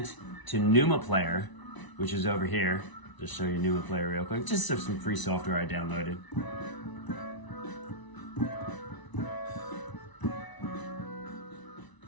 to Numa Player, which is over here. Just show you Numa Player real quick, just some free software I downloaded.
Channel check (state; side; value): late; right; 1.0 ms